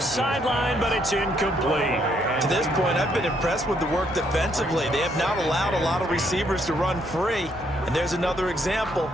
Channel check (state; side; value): normal; both; correlation 0.71